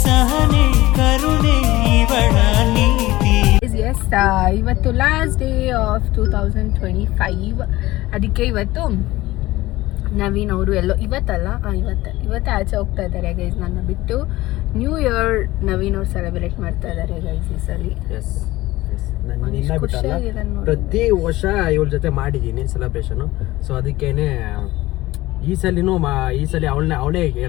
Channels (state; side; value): quieter; right; 17.9 dB